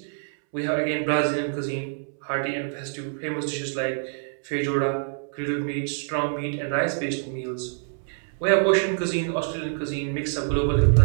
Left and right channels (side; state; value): left; silent; 61 dB below the other